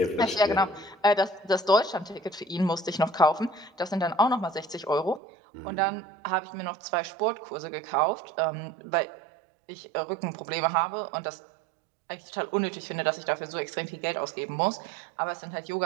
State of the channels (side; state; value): left; drops out; at 5.2 s